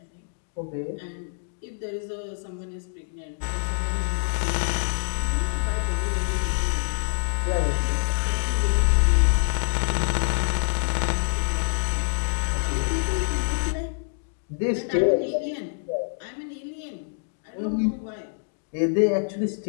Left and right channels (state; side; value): silent; right; digital silence